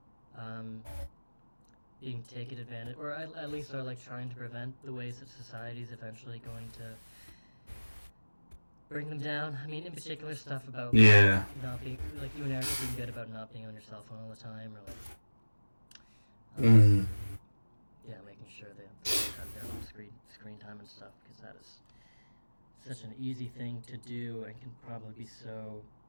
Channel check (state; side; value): inverted; both; correlation -1.00